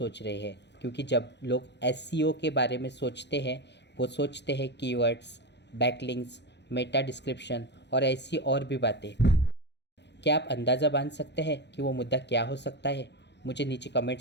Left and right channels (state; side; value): late; right; 0.50 ms